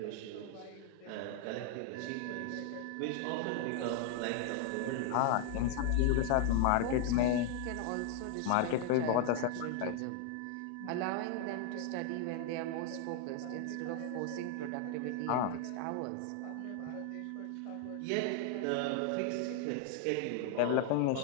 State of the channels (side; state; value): both; different; correlation 0.00